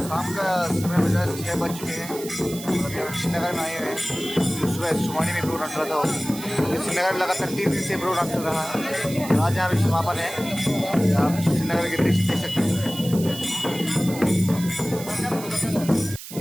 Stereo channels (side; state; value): right; noise; hiss, 12 dB below the sound